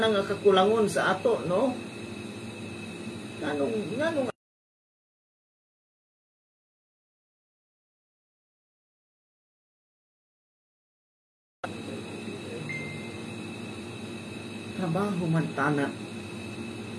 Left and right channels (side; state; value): both; identical; correlation 1.00